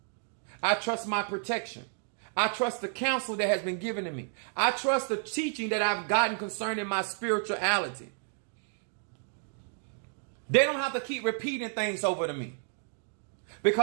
I trust my protection. I trust the counsel that has been given to me. I trust the teaching that I've gotten concerning my spirituality. They don't have to keep repeating things over to me.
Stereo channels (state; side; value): silent; left; 57 dB below the other